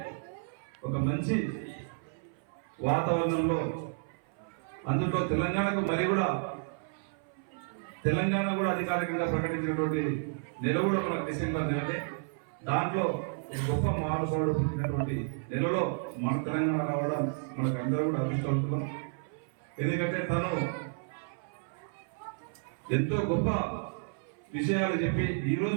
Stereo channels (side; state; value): left; silent; 57 dB below the other